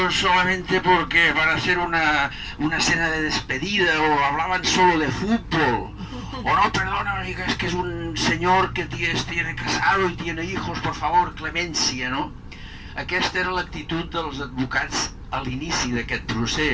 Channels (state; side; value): identical; both; correlation 1.00